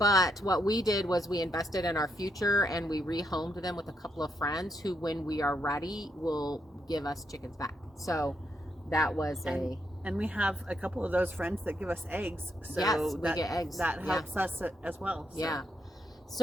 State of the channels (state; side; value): normal; both; correlation 0.78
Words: what we did was we invested in our future, and we rehomed them with a couple of friends who, when we are ready, will give us chickens back. So that was and we have a couple of those friends that give us eggs. So yes, we get eggs. That helps us as well. So. Yeah.